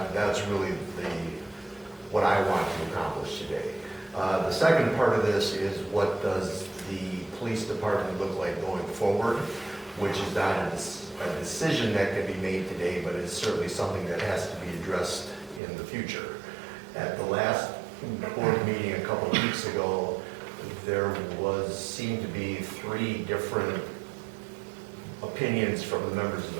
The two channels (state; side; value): drops out; left; at 15.6 s